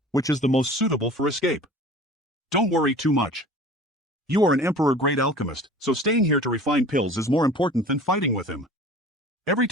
which is the most suitable for escape. Don't worry too much. You are an Emperor-grade alchemist, so staying here to refine pills is more important than fighting with him. Every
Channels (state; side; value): normal; both; correlation 0.43